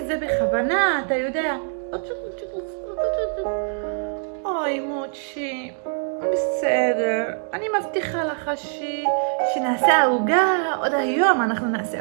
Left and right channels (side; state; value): left; silent; 58 dB below the other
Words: זה בכוונה, אתה יודע. אוי, מוצ'י. בסדר. אני מבטיחה לך שנעשה עוגה. עוד היום אנחנו